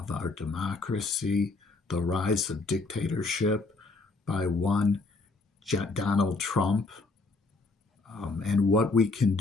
our democracy, the rise of dictatorship by one Donald Trump, and what we can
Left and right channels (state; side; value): quieter; right; 3.6 dB